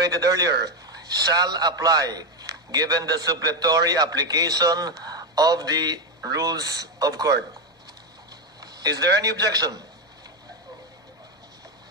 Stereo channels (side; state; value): both; normal; correlation 0.08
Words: earlier, shall apply given the suppletory application of the rules of court. Is there any objection?